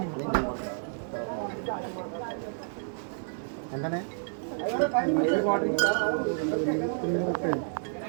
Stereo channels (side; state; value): left; silent; digital silence